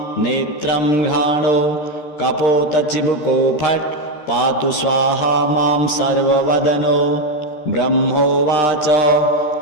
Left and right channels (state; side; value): late; right; 13 ms